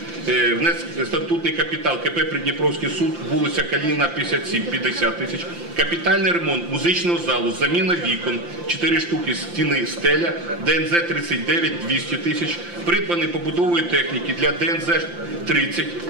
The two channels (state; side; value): late; left; 5.8 ms